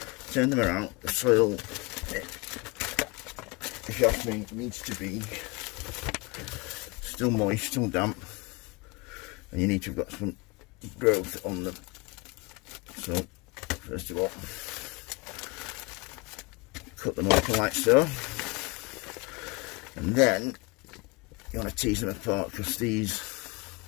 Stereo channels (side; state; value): right; quieter; 26.1 dB